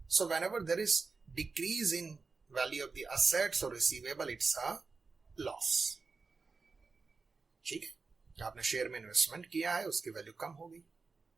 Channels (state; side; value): quieter; left; 4.4 dB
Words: So whenever there is decrease in value of the assets और रिसीवेबल, इट्स अ लॉस. ठीक है. आपने शेयर में इन्वेस्टमेंट किया है, उसकी वैल्यू कम हो गई